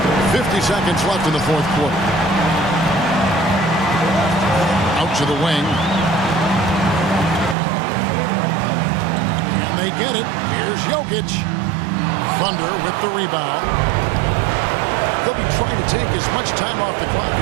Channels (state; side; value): drops out; left; at 7.6 s